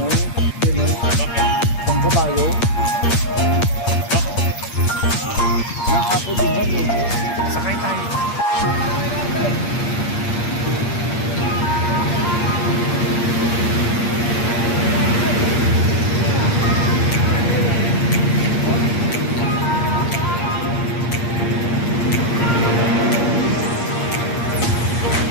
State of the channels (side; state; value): right; late; 8.6 ms